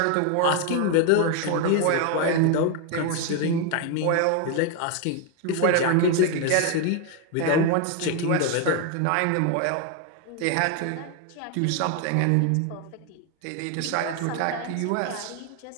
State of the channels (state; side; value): different; both; correlation 0.01